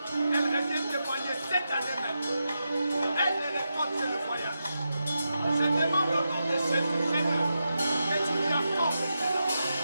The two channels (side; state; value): both; inverted; correlation -0.87